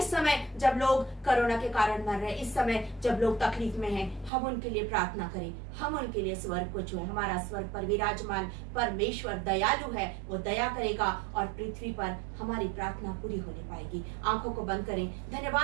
समय जब लोग कोरोना के कारण मर रहे हैं, इस समय जब लोग तकलीफ में हैं, हम उनके लिए प्रार्थना करें, हम उनके लिए स्वर्ग को छुएं। हमारा स्वर्ग पर विराजमान परमेश्वर दयालु है, वो दया करेगा और पृथ्वी पर हमारी प्रार्थना पूरी होने पाएगी। आंखों को बंद करें।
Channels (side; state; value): left; drops out; at 4.3 s